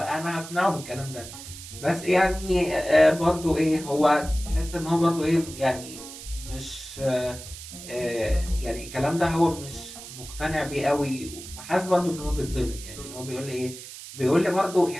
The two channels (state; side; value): noise; right; hiss, 13 dB below the sound